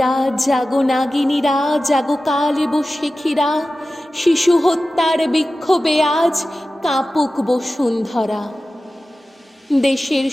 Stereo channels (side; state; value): both; normal; correlation 0.95